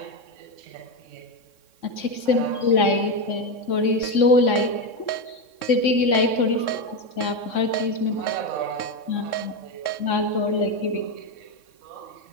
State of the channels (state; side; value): late; right; 3.6 ms